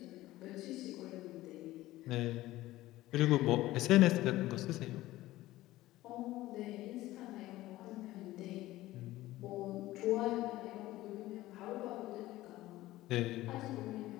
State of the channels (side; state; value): right; quieter; 16.6 dB